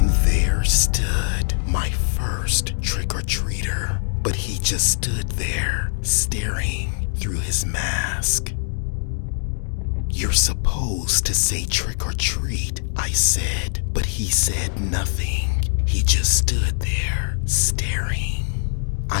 there stood my first trick-or-treater, but he just stood there staring through his mask. "You're supposed to say trick or treat," I said, but he said nothing. He just stood there, staring.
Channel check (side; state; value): right; silent; digital silence